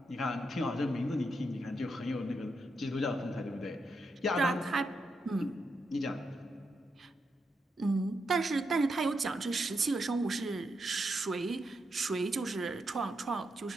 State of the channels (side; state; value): both; normal; correlation 0.83